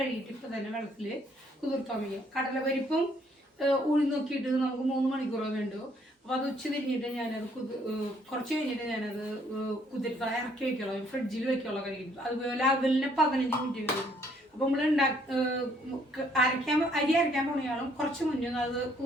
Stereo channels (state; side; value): normal; both; correlation 0.66